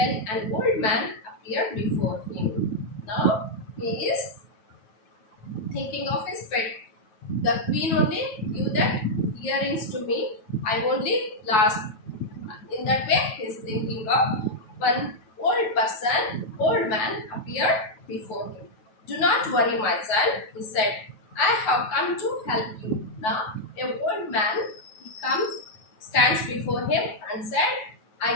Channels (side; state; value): right; late; 9.2 ms